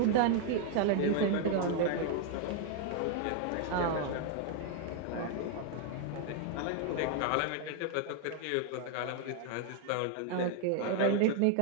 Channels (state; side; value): different; both; correlation 0.00